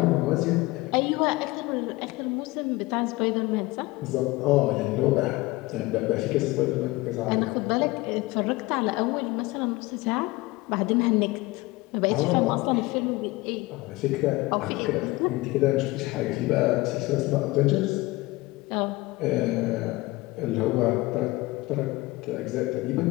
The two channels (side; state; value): right; quieter; 21.1 dB